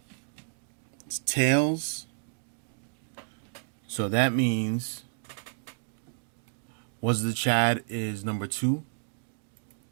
It's tails. So that means Was the Chad is number 2.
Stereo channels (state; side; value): silent; left; digital silence